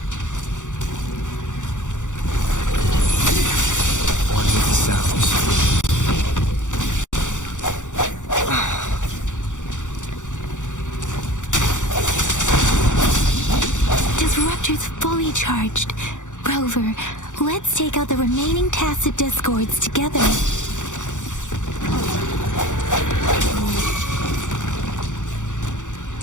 One with the sounds. Disruptor's fully charged. Rover, let's take out the remaining tacit discords together.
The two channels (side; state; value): right; late; 0.86 ms